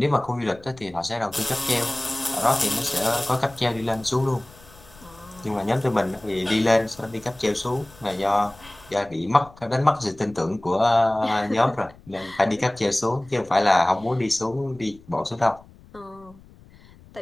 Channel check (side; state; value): left; noise; rumble, 24 dB below the sound